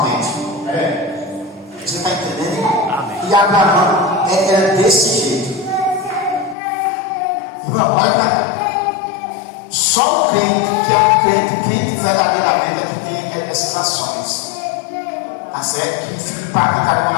Você está entendendo? Amém. E Abraão era desse jeito. Irmão, olha para cá. Só o crente que é um crente verdadeiramente é que tem essas ações. Tá certo? Que fica impactado quando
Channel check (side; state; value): right; drops out; at 6.6 s